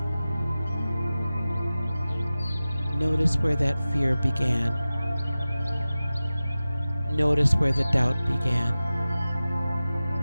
notice where that fear began. Notice where the doubt began.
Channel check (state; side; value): inverted; both; correlation -0.97